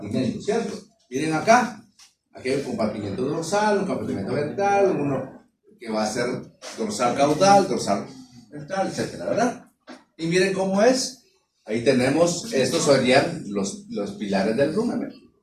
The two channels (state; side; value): identical; both; correlation 1.00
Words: ¿cierto? Miren acá, aquí hay un compartimento dorsal, un compartimento ventral, uno que va a ser dorsal caudal, dorsal ventral, etcétera, ¿verdad? Y miren cómo es. Ahí tenemos, estos serían los pilares del rumen,